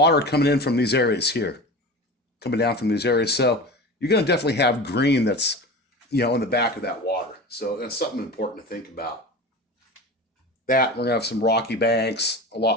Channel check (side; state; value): both; normal; correlation 0.31